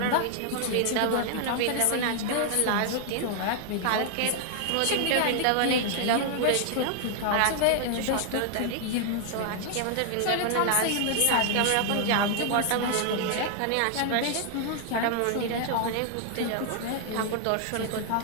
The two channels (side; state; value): both; different; correlation 0.00